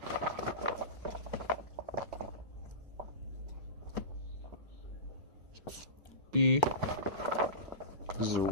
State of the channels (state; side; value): late; left; 4.9 ms